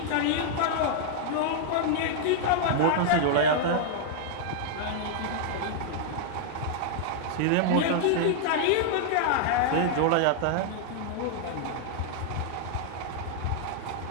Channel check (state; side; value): different; both; correlation -0.01